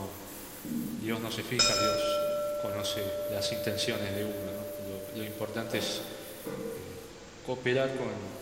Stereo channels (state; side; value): identical; both; correlation 1.00